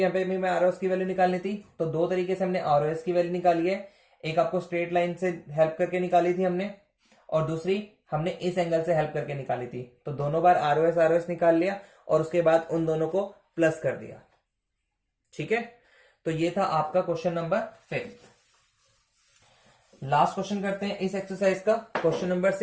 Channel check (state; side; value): identical; both; correlation 1.00